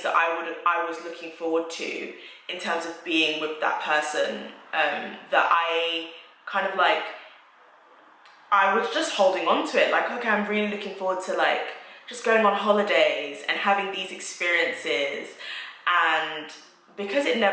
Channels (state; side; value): identical; both; correlation 1.00